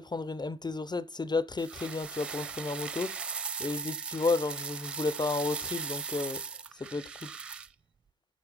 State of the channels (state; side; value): normal; both; correlation 0.56